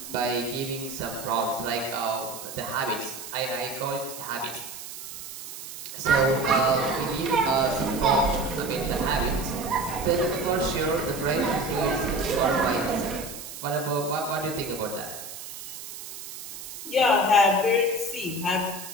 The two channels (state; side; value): noise; right; hiss, 11 dB below the sound